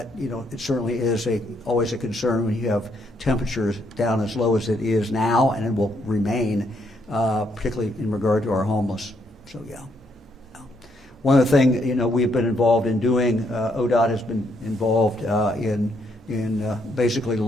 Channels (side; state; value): both; normal; correlation 0.74